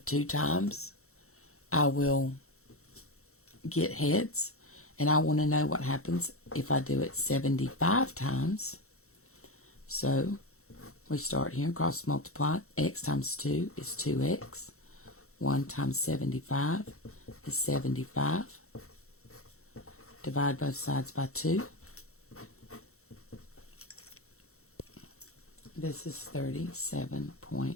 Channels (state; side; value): late; right; 0.63 ms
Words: 2 times I will get heads. And I want to know what happens if I do it 75 times. So we start here and cross multiply. X times 2 is 2x. 1 times 75 is 75. Divide both sides by 2. This is